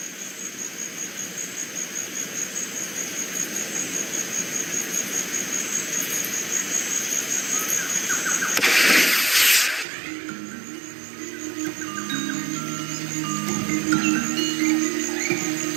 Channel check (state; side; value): drops out; left; at 9.9 s